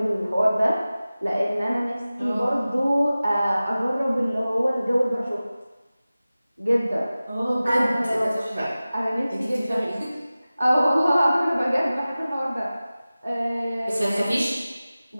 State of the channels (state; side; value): inverted; both; correlation -0.97